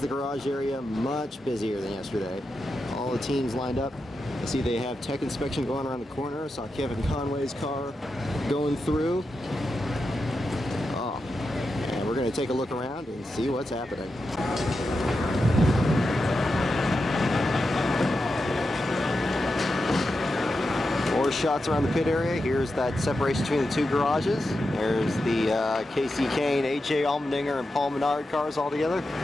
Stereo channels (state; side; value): normal; both; correlation 0.89